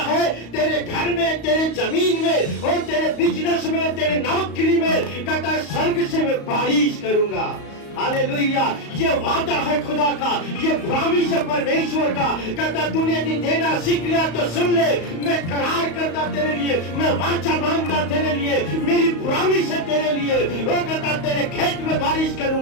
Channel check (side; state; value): right; late; 35 ms